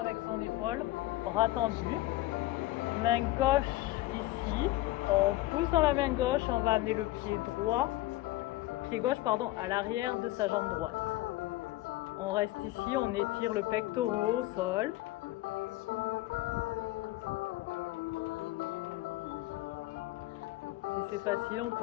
son épaule, bras tendu. Main gauche ici. On pousse dans la main gauche, on va amener le pied gauche à l'arrière de sa jambe droite. On reste ici, on étire le pectoral au sol. Si c'est facile, on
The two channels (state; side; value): quieter; right; 17.7 dB